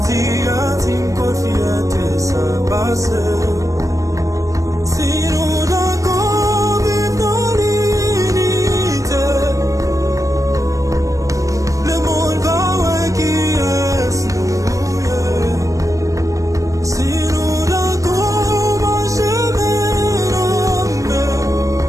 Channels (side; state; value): left; late; 0.16 ms